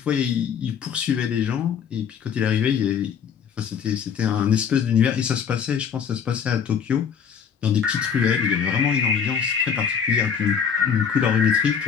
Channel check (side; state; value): right; quieter; 7.3 dB